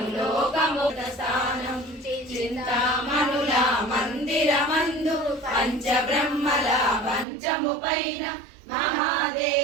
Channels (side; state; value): left; drops out; at 7.2 s